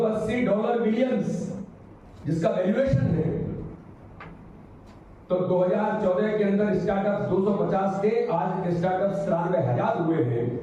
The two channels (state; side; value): identical; both; correlation 1.00